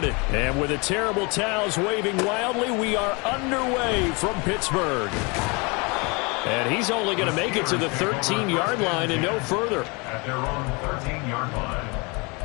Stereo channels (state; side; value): quieter; right; 29.0 dB